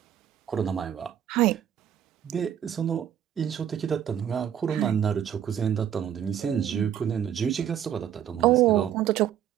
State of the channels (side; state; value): left; quieter; 9.8 dB